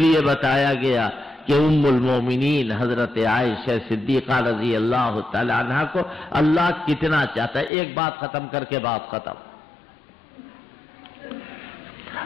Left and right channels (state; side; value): drops out; right; at 7.7 s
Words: بتایا گیا کہ ام المومنین حضرت عائشہ صدیقہ رضی اللہ تعالی عنہ کو اللہ کتنا چاہتا ہے۔ ایک بات ختم کر کے بات ختم۔